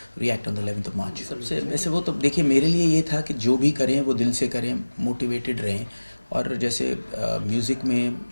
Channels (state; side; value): inverted; both; correlation -1.00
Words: react on the 11th of March. सबसे वैसे वो तो देखिए, मेरे लिए ये था कि जो भी करें वो दिल से करें, मोटिवेटेड रहें। और जैसे म्यूज़िक में